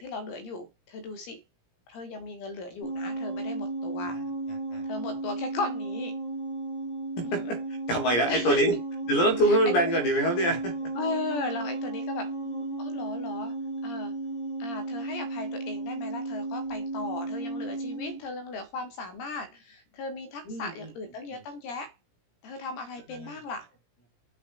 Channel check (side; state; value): right; late; 17 ms